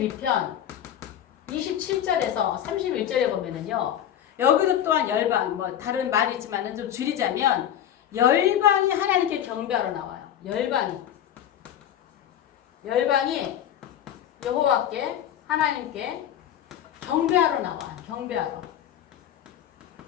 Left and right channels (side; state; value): right; quieter; 10.4 dB